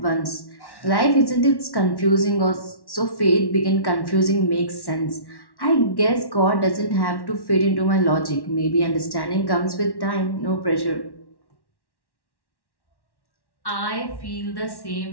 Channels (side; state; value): right; late; 1.1 ms